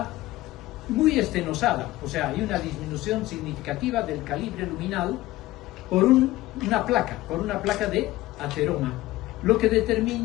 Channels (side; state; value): right; quieter; 17.1 dB